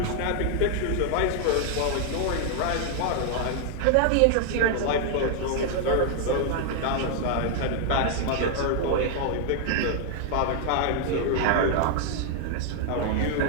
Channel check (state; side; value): different; both; correlation 0.00